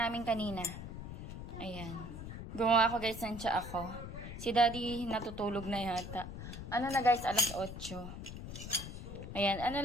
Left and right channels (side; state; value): left; noise; rumble, 9 dB below the sound